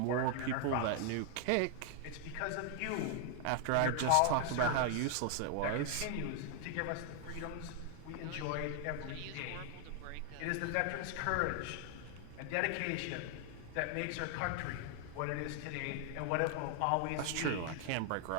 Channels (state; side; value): different; both; correlation 0.00